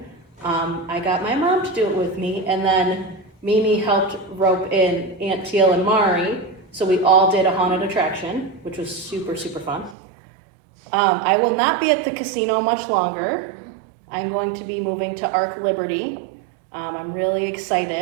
I got my mom to do it with me, and then Mimi helped rope in Aunt Teal and Mari, so we all did a haunted attraction, which was super, super fun. I will not be at the casino much longer. I'm going to be moving to Arc Liberty. I'm really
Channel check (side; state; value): left; drops out; at 10.0 s